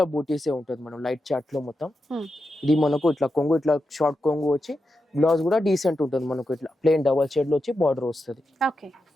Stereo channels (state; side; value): normal; both; correlation 0.88